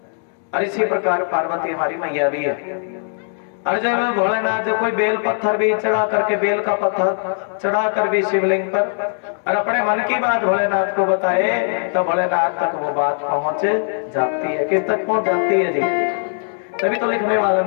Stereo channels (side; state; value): right; silent; digital silence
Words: और इसी प्रकार पार्वती हमारी मैया भी है। और जब भोलेनाथ जो कोई बेल पत्थर भी चढ़ा करके बेल का पत्थर चढ़ा कर भी शिवलिंग पर और अपने मन की बात भोलेनाथ को बताए तो भोलेनाथ तक वो बात पहुंच जाती है। किस तक पहुंच जाती है जी? तभी तो लिखने वाले